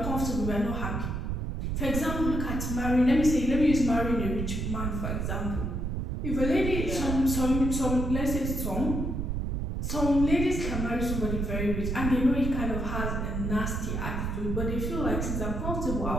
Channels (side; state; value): right; noise; rumble, 2 dB below the sound